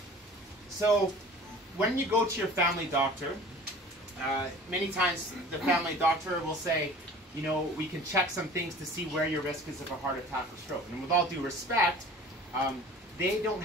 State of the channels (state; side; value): normal; both; correlation 0.44